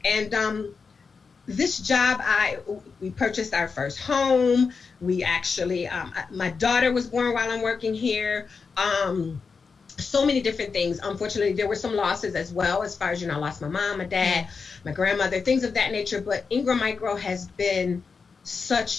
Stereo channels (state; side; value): quieter; right; 5.1 dB